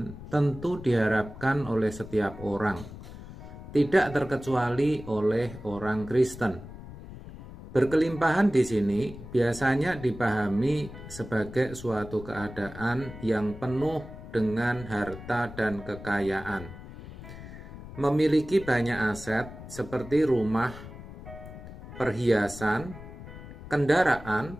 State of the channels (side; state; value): left; noise; rumble, 14 dB below the sound